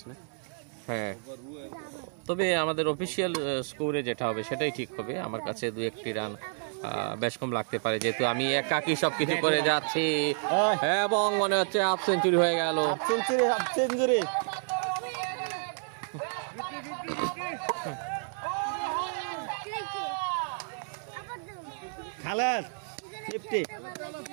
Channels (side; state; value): left; silent; digital silence